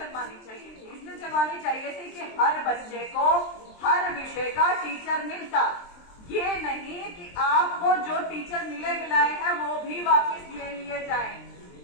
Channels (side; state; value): right; late; 23 ms